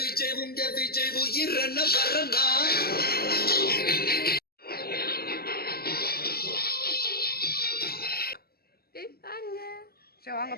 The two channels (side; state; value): right; late; 0.45 ms